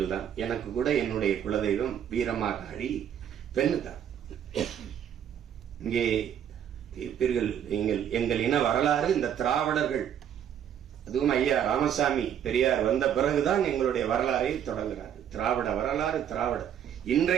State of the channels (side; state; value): left; quieter; 9.4 dB